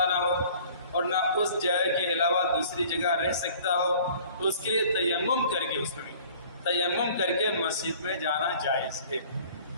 نہ ہو اور نہ اس جگہ کے علاوہ دوسری جگہ رہ سکتا ہو تو اس کے لیے تیمم کر کے، اس میں تیمم کر کے مسجد میں جانا جائز ہے۔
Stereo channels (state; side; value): inverted; both; correlation -0.50